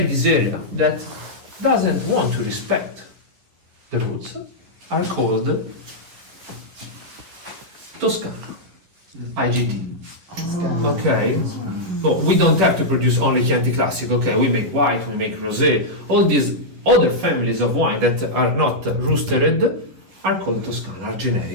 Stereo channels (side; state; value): left; late; 11 ms